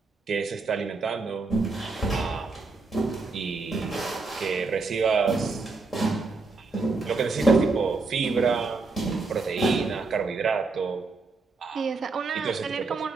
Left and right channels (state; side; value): quieter; left; 4.0 dB